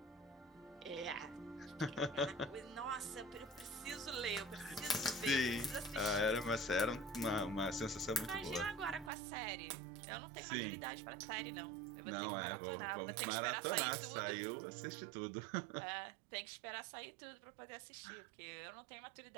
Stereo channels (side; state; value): left; drops out; at 9.1 s